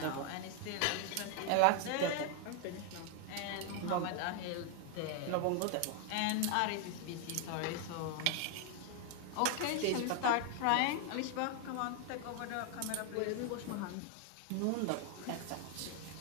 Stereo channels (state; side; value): different; both; correlation 0.01